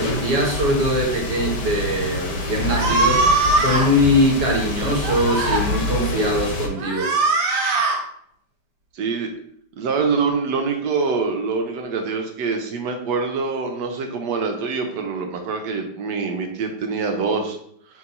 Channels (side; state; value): left; late; 5.1 ms